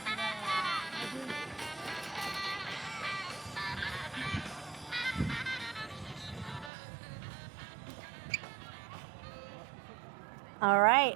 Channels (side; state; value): left; drops out; at 6.7 s